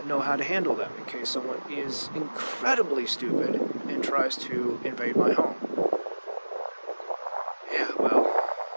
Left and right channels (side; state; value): both; inverted; correlation -1.00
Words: know how to handle them in case someone is incredibly stupid and tries to invade my home. Yeah, well,